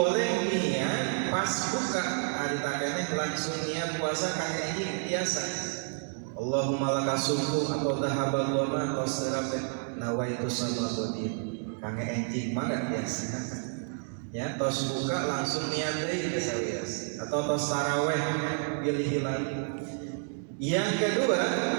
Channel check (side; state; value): left; silent; 58 dB below the other